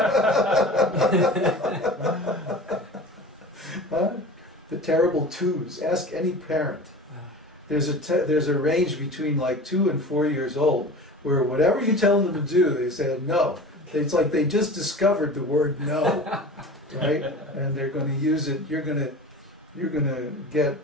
Huh? The terrible twos. Ask any parent. There's a range between like 2 and 4 years old where whatever you tell them to do, they say no. It's like they just discovered the word no, right? And they're going to use it. You're going to get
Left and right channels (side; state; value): both; normal; correlation 0.36